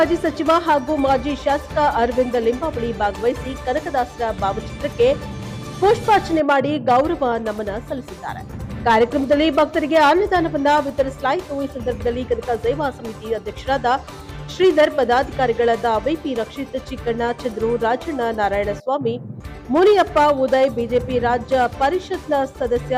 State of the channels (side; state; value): both; identical; correlation 1.00